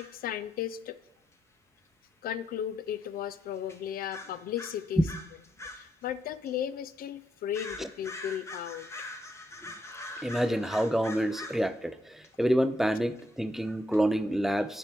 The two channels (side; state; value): both; normal; correlation 0.79